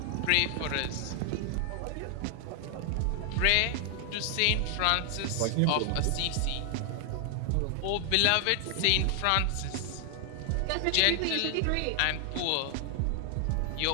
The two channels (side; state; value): both; different; correlation 0.00